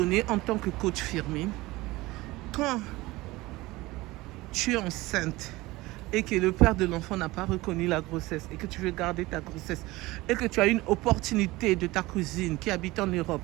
en tant que coach Firmin, quand tu es enceinte et que le père de l'enfant n'a pas reconnu la grossesse et que tu veux garder ta grossesse et que tu as une opportunité de ta cousine qui habite en Europe,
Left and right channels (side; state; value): left; quieter; 20.1 dB